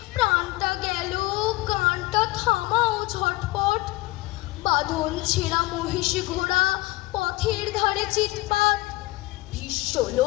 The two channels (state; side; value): quieter; right; 20.4 dB